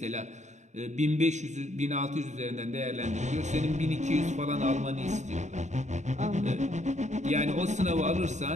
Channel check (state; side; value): late; left; 0.34 ms